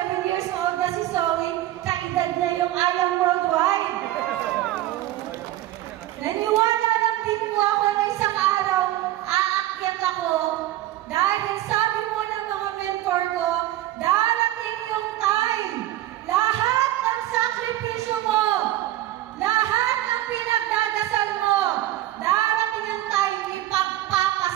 years old na si Zoe, kaedad na yung Ayang Worldwide. Naniwala lang din po ako na isang araw, aakyat ako dahil sabi po ng mga mentor ko, darating yung time, lahat ng sakripisyo mo, lahat ng pinagdadasal mo, darating ang time,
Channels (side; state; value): left; quieter; 14.8 dB